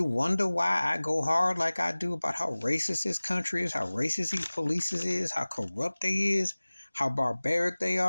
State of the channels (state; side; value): inverted; both; correlation -1.00